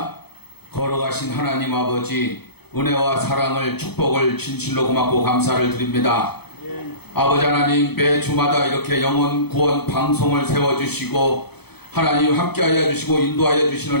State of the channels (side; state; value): right; late; 0.98 ms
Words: 걸어가신 하나님 아버지, 은혜와 사랑을, 축복을 진실로 고맙고 감사를 드립니다. 아버지 하나님, 매 주마다 이렇게 영혼 구원 방송을 세워주시고 하나님 함께하여 주시고 인도하여 주시는